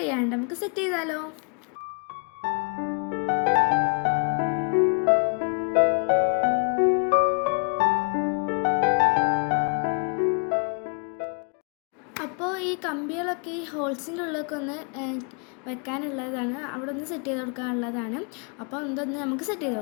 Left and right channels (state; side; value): quieter; right; 36.9 dB